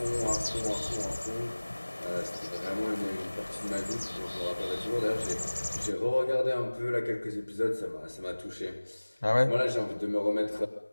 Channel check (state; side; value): inverted; both; correlation -1.00